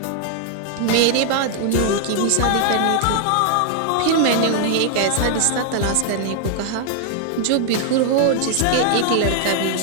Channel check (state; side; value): different; both; correlation 0.00